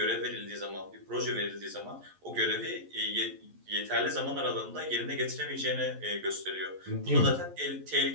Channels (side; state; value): left; late; 11 ms